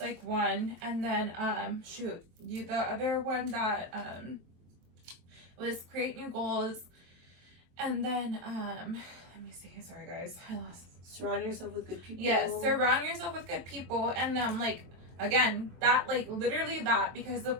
one, and then the other one that was create new goals, and then let me see. Sorry guys, I lost. Surround yourself with good people. Yes, surround yourself with good people, and like, again, that, like, literally that, because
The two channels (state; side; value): late; left; 23 ms